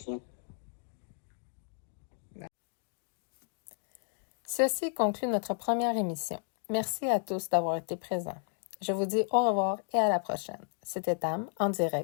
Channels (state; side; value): silent; right; 56 dB below the other